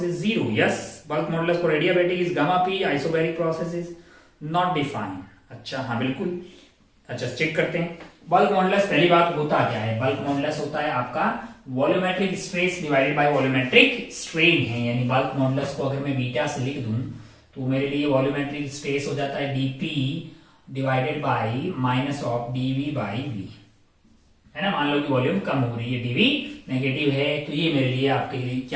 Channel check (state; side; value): identical; both; correlation 1.00